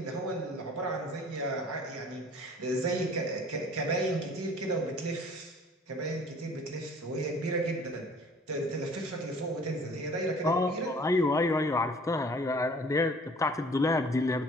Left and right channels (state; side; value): normal; both; correlation 0.51